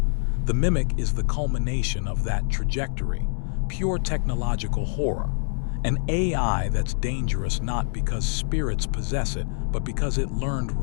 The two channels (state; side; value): silent; right; 62 dB below the other